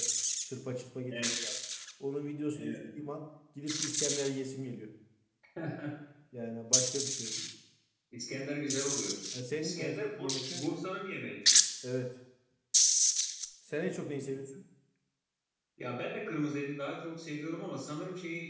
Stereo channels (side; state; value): both; identical; correlation 1.00